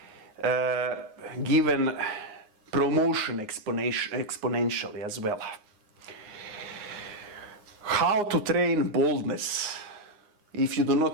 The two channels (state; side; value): late; left; 9.6 ms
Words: given promotion exponentially as well. How to train boldness? If you do